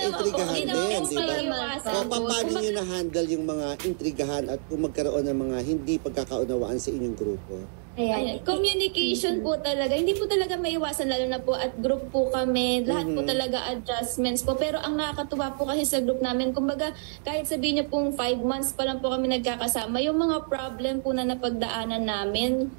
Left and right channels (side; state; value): left; silent; 60 dB below the other